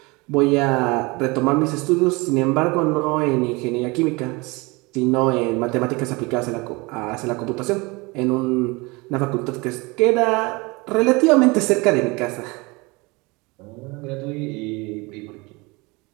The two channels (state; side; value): quieter; left; 25.5 dB